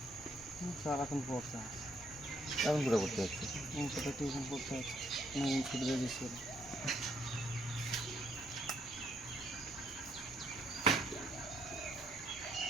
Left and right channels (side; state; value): both; normal; correlation 0.70